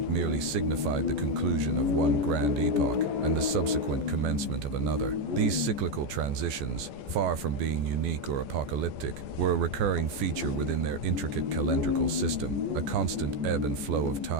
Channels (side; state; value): left; late; 14 ms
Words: merely signified the conclusion of one grand epoch and the subsequent commencement of another. These cyclical transitions, far from being unique or apocalyptic, were a recurring feature within their intricate calendrical system, a constant ebb and flow of